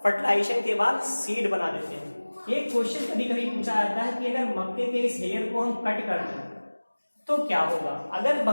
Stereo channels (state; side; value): inverted; both; correlation -1.00